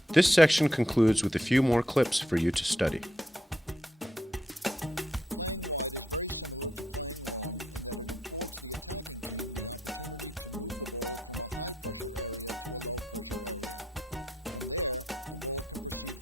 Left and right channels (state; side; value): normal; both; correlation 0.77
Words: This section concludes with a few more clips for you to study. Playing wide is very similar to playing long in that it affords the attacking team the opportunity to move the ball from a high-pressure area to a low-pressure area. From there, the ball can proceed